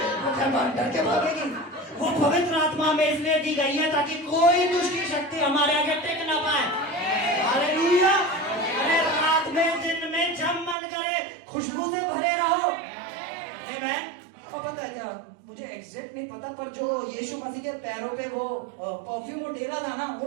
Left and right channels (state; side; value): drops out; left; at 10.8 s